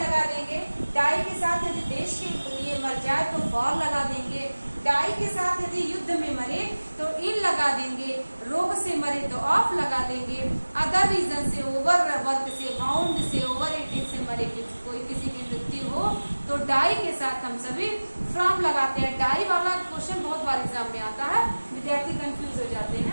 देंगे, डाई के साथ यदि देश के लिए मर जाए तो फॉर लगा देंगे, डाई के साथ यदि युद्ध में मरे तो इन लगा देंगे, रोग से मरे तो ऑफ लगा देंगे, अदर रीजन से, ओवर वर्क से, बाउंड से, ओवर ईटिंग से मरे कोई किसी की मृत्यु हो तो डाई के साथ हम सभी फ्रॉम लगाते हैं। डाई वाला क्वेश्चन बहुत बार एग्जाम में आता है, विद्यार्थी कंफ्यूज हो जाते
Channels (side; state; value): both; inverted; correlation -1.00